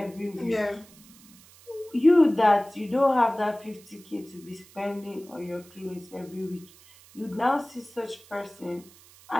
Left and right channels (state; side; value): noise; right; hiss, 24 dB below the sound